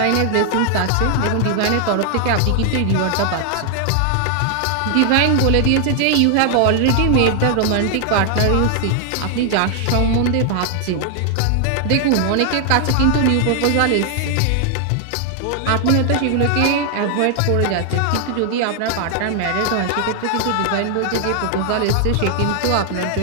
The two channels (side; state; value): both; different; correlation 0.00